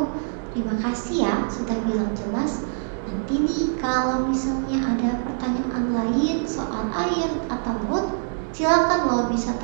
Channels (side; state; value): left; silent; digital silence